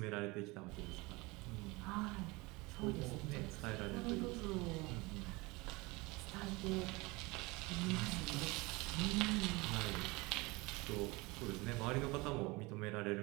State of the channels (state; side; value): quieter; left; 24.2 dB